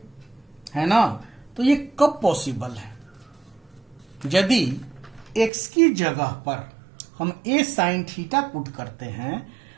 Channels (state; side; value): drops out; left; at 5.5 s